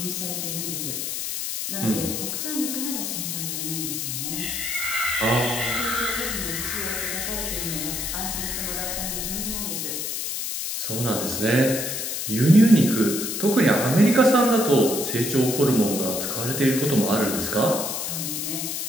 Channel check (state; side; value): noise; left; hiss, 3 dB below the sound